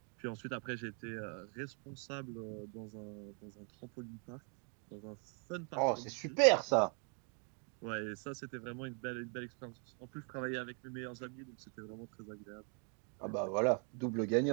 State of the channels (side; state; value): left; quieter; 39.9 dB